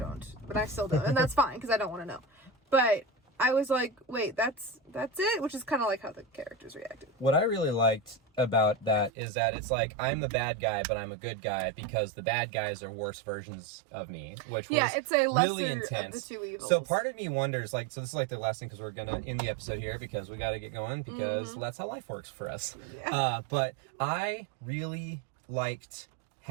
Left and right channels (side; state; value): left; drops out; at 9.1 s